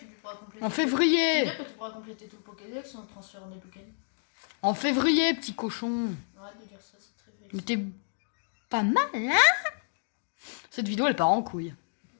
pourras compléter. En C'est-à-dire février. que tu pourras compléter tout le Pokédex en transférant des Pokémon. En février, petit cochon. Arrête de dire ça, c'est très Mais vrai. t'es pas mal, hein? Cette vidéo, elle part en couille.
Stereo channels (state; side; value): silent; right; digital silence